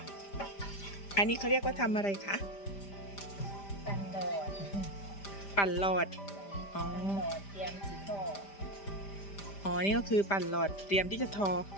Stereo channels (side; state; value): right; late; 5.0 ms